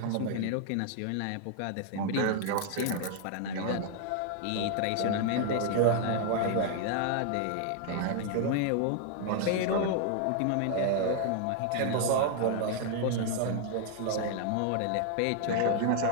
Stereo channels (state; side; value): different; both; correlation 0.00